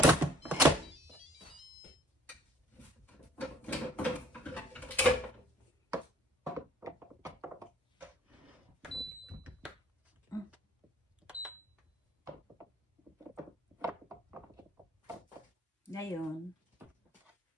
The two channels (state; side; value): normal; both; correlation 0.55